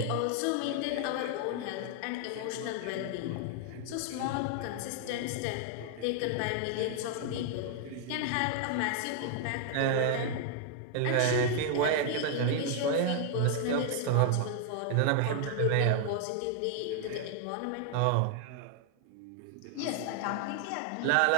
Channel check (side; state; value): both; different; correlation 0.00